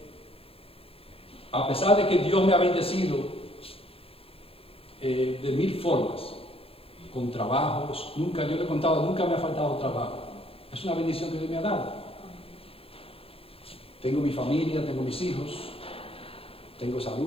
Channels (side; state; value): right; late; 0.27 ms